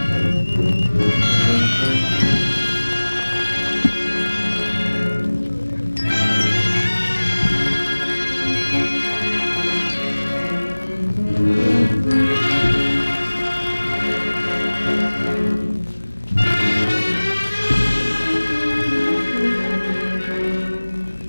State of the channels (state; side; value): inverted; both; correlation -1.00